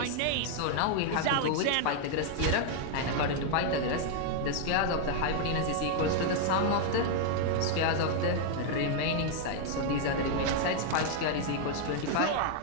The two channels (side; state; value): both; different; correlation 0.00